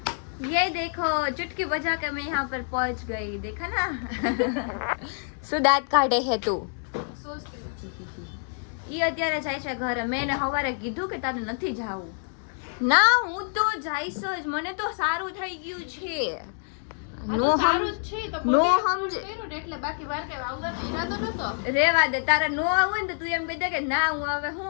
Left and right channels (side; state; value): right; silent; 60 dB below the other